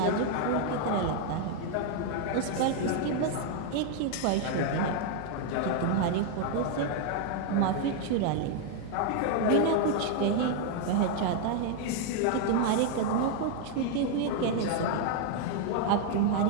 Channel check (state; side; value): different; both; correlation 0.00